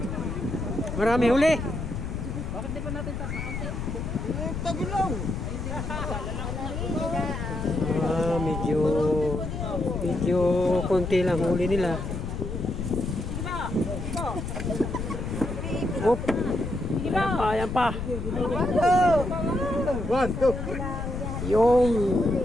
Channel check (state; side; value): noise; left; rumble, 5 dB below the sound